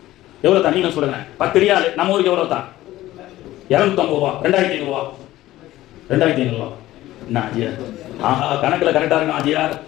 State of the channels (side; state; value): right; quieter; 15.6 dB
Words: எவ்வளவு தான் நீங்க சொல்லுங்க. 10 ரியால் நம்ம ஊருக்கு எவ்வளவு தான், 250 ரூபா. 2500 ரூபா, 2500 ரூபா. என்ன ஆஜியார், ஆஹா கணக்குல கரெக்டா இருக்கும் ஆஜியார்.